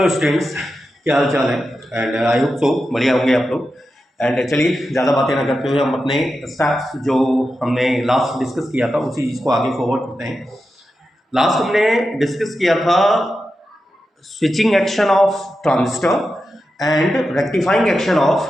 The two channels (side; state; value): both; normal; correlation 0.90